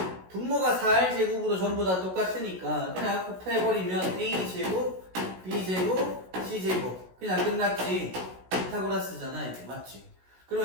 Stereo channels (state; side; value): late; left; 16 ms